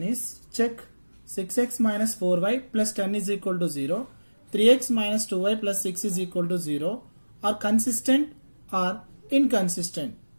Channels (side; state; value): both; inverted; correlation -1.00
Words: is, check 6x minus 4y plus 10 is equal to 0, 3x minus 2y plus 6 is equal to 0 are consistent or inconsistent.